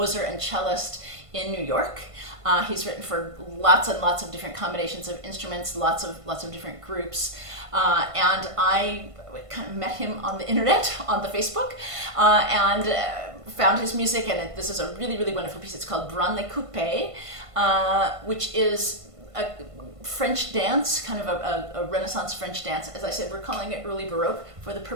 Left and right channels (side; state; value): left; late; 1.5 ms